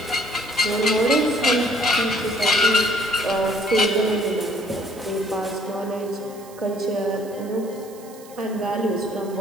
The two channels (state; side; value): noise; right; hiss, 22 dB below the sound